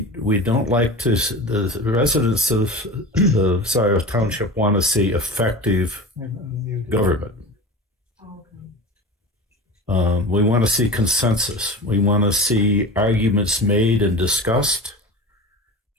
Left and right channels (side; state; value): both; normal; correlation 0.31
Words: don't like to, the residents of the Scio Township want to see effective government. We want to see consensus. We want to see arguments made and discussed,